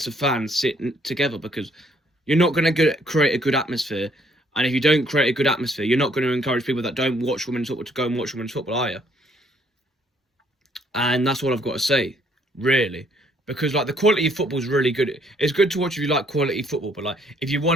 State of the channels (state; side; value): normal; both; correlation 0.66